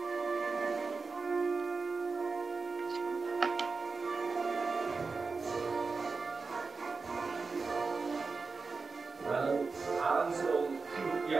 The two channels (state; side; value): quieter; left; 4.4 dB